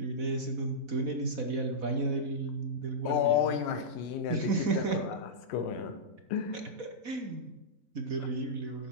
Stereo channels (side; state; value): left; late; 4.1 ms